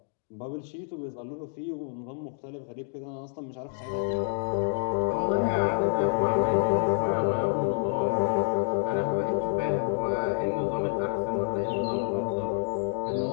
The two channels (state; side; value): silent; right; digital silence